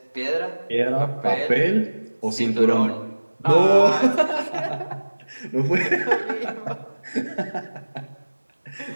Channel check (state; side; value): inverted; both; correlation -1.00